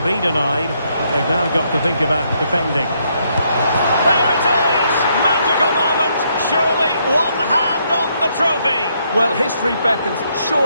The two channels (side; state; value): both; inverted; correlation -0.74